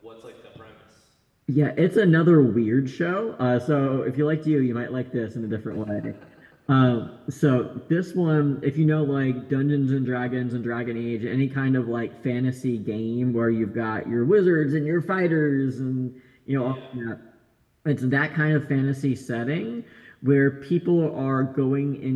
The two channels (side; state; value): both; identical; correlation 1.00